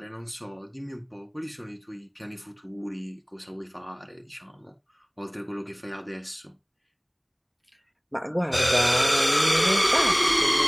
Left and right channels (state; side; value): identical; both; correlation 1.00